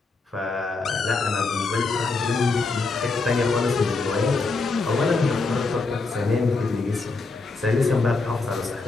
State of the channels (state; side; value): quieter; right; 3.9 dB